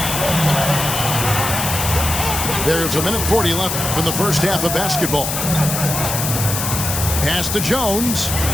There's 1:40 left from the first half of basketball. Pass to Jones.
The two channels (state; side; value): noise; left; hiss, 3 dB below the sound